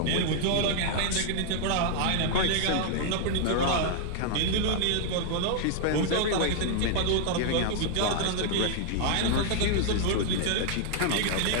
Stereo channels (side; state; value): both; different; correlation 0.00